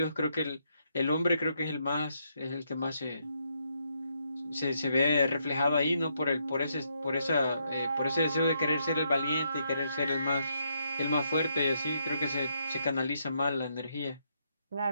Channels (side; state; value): both; inverted; correlation -0.77